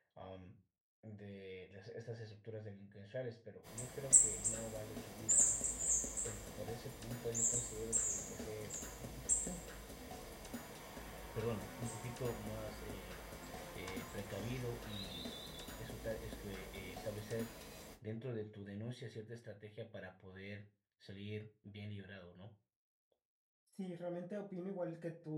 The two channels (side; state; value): both; identical; correlation 1.00